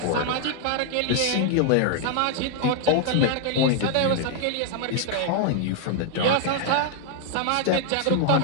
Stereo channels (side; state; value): both; different; correlation 0.00